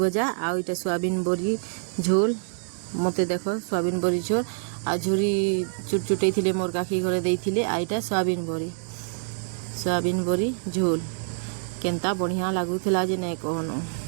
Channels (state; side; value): silent; left; digital silence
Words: आ इटा सोयाबीन बड़ी झोल मते देखो सोयाबीन बड़ी झोल आ झुरी चुटचुटै थिले मोर काकी घरे देइथिले आ इटा सोयाबीन बड़ी झोल केनता बढ़िया लागुथिला जे नै कहनो